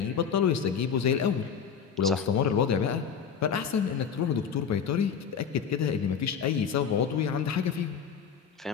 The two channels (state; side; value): quieter; right; 7.2 dB